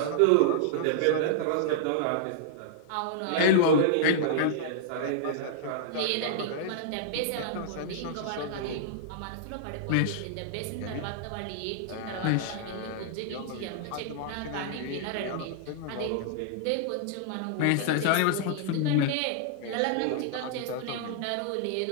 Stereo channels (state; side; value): different; both; correlation -0.01